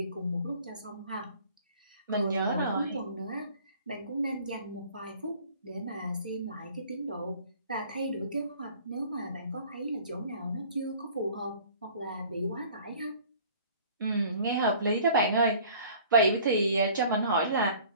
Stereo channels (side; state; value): both; inverted; correlation -0.50